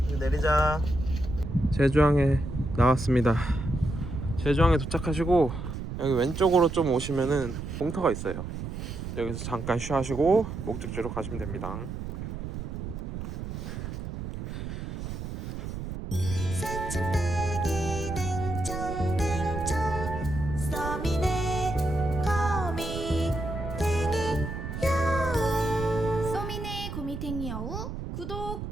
이제 내리자. 제주항에 나왔습니다. 제주항에 도착하시고 여기 왼쪽으로 좀 오시면은 공터가 있어요. 여기서 잠깐 쉬하시고 목적지로 가시면 됩니다. 소민의 고미탱이 여우 구독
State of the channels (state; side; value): noise; right; rumble, 6 dB below the sound